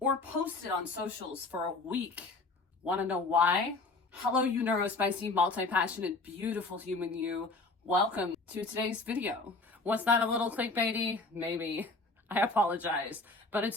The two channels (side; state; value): right; quieter; 3.5 dB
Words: or posted on socials for a week. Want to know why? Hello, you neurospicy, multi-passionate, beautiful human you. Welcome to today's video. Was that a little clickbaity? Maybe. I apologize, but